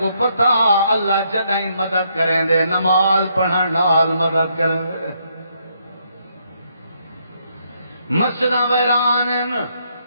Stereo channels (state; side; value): inverted; both; correlation -0.74